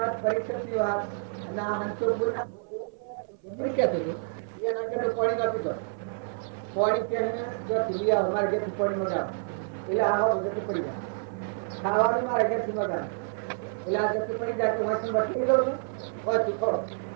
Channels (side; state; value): left; silent; 57 dB below the other